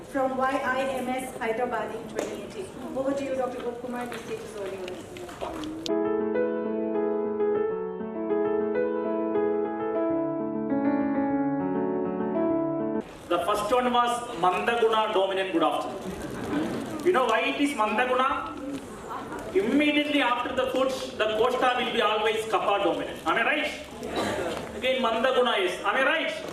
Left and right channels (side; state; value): both; identical; correlation 1.00